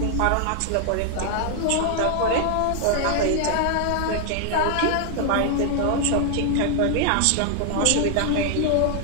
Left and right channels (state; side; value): different; both; correlation 0.00